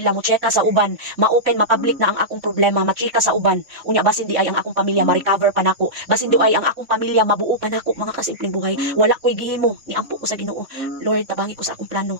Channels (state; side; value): late; left; 3.6 ms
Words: mo cheka sa uban, ma-open ma-public na ang akong problema, machika sa uban. Unya basin di ay ang akong pamilya ma-recover pa nako, basin di ay ang akong pamilya mabuo pa nako mga kasimpleng buhay. Wala ko'y gihimo, niampo ko sa Ginoo. Lord, tabangi ko sa akong plano